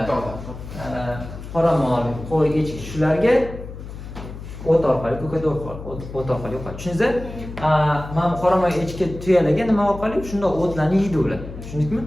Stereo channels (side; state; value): left; noise; hum, 12 dB below the sound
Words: qoramol, qo'y, echki shularga o't orqali, ko'kat o't orqali yuqadi. Tushundingizmi? Mana qoramol, echki, tuyalarga nima orqali? Shunda o'tlarni yeydi ular. Tushundingmi?